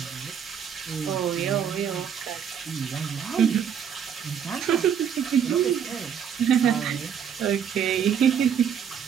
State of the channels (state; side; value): quieter; left; 8.2 dB